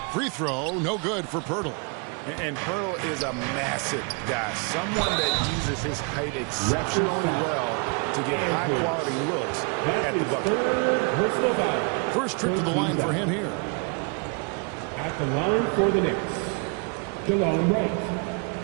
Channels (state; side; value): quieter; left; 34.8 dB